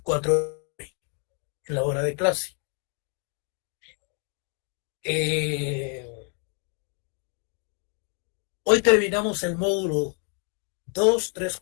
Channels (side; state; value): right; quieter; 38.2 dB